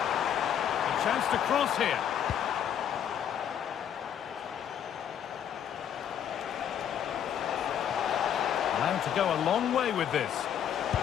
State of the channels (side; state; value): right; quieter; 9.3 dB